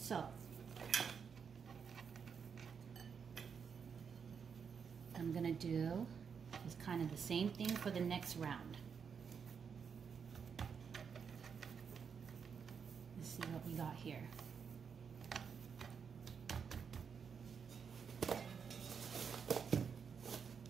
I'm gonna do is kind of the same thing for the next round. Let's see what we got here.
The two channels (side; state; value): left; quieter; 6.5 dB